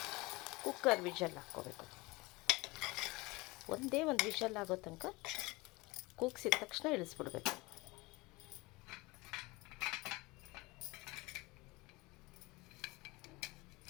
ಕುಕ್ಕರ್ ವಿಷಲ್ ಹಾಕ್ಕೋಬೇಕು. ಒಂದೇ ಒಂದು ವಿಷಲ್ ಆಗೋ ತನಕ ಕೂಗಿಸಿದ ತಕ್ಷಣ ಇಳಿಸ್ಬಿಡ್ಬೇಕು.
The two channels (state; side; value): quieter; right; 23.2 dB